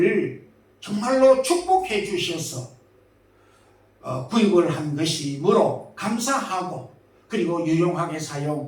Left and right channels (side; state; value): both; identical; correlation 1.00